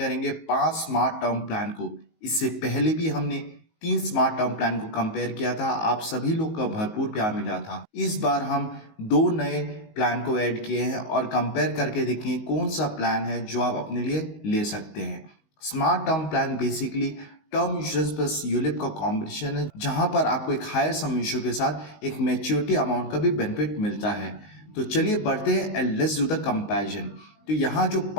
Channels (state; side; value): late; right; 19 ms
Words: 5 स्मार्ट टर्म प्लान को। इससे पहले भी हमने 3 स्मार्ट टर्म प्लान को कंपेयर किया था। आप सभी लोग का भरपूर प्यार मिला था। इस बार हम 2 नए प्लान को ऐड किए हैं और कंपेयर करके देखेंगे कौन सा प्लान है जो आप अपने लिए ले सकते हैं। Smart term plan basically term insurance plus ULIP का कॉम्बिनेशन है, जहां पर आपको एक हायर सम इंश्योर के साथ एक मैच्योरिटी अमाउंट का भी बेनिफिट मिलता है। तो चलिए बढ़ते हैं and let's do the comparison. तो यहाँ जो